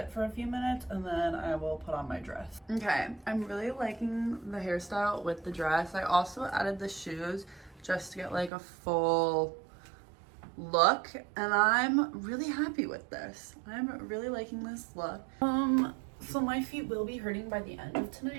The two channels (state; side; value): drops out; left; at 8.5 s